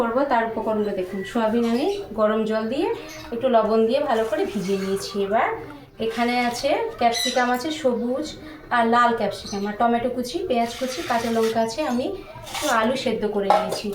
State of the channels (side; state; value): both; identical; correlation 1.00